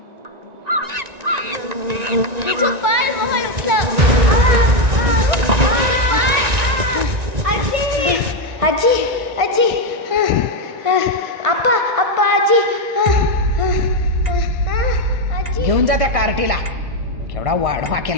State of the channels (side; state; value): left; late; 1.9 ms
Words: आजी आजी आजी, आप्पा आप्पा आजी. घेऊन जा त्या कार्टीला. केवढा वाढवा